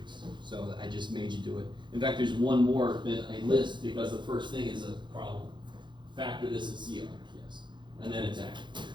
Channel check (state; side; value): late; left; 0.23 ms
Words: So I just made you do it. In fact, there's one more that I list because the first thing is a problem. Factor this in CR. Yes, and then it's active.